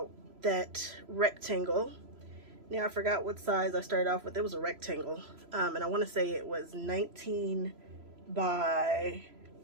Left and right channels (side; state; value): left; late; 3.0 ms